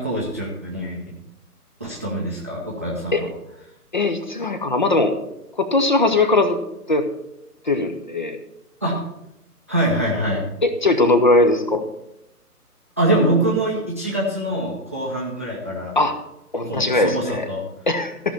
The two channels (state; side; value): normal; both; correlation 0.10